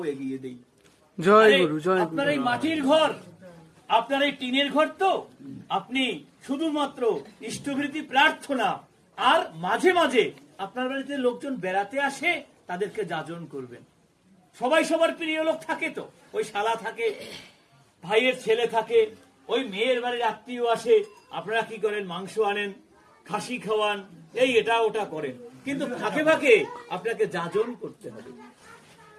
এগিয়ে দেই। জয় গুরু, জয় গুরু। আপনার এই মাটির ঘর, আপনার এই টিনের ঘর, তো আপনি শুধুমাত্র ইষ্টভৃতি প্রার্থনা আর মাঝে মাঝে আপনার বাড়িতে লোকজন বেড়াতে আসে, তাদেরকে যাজন করবেন। সবাই সবার প্রিয় লোক থাকে, তো ওই শালা থাকে, ভাইয়ের ছেলে থাকে, ওই মেয়ের বাড়ির আত্মীয় আসে, আপনারা কি করেন? মাংস আনেন, খাসি খাওয়ান, এই এটা ওটা করেন, কিন্তু ফাঁকে ফাঁকে আপনাকে যাজন করতে হবে।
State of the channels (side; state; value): both; identical; correlation 1.00